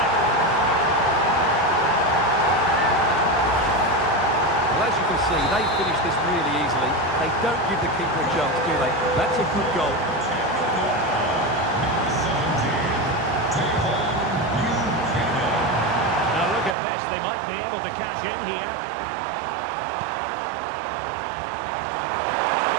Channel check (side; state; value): left; drops out; at 16.8 s